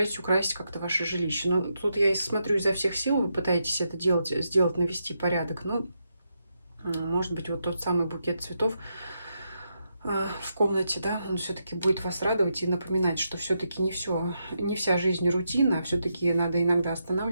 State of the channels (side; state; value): both; inverted; correlation -0.83